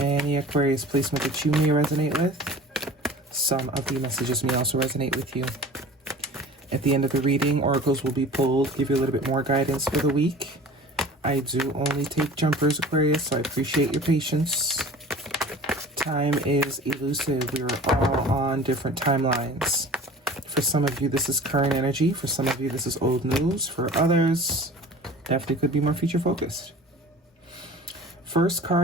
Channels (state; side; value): normal; both; correlation 0.42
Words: Aquarius placement that you may resonate with, some of the messages may also resonate with you. At the end of the reading, oracles will be pulled, give you a little bit more guidance for the week. I do only take jumpers, Aquarius, so I appreciate your patience. Time is elusive. We are all on different timelines. For some of you, this is current energy. For some of you, this is old news. For others, definitely could be more future focused. First